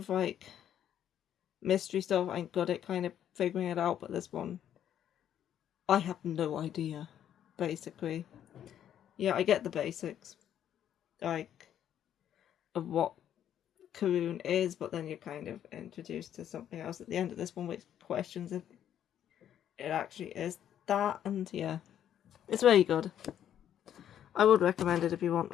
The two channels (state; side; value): quieter; right; 10.2 dB